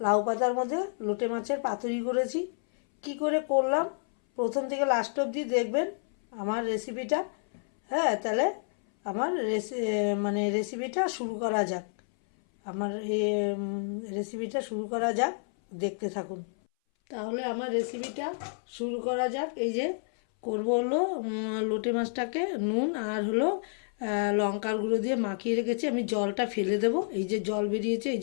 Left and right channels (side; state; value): right; silent; 58 dB below the other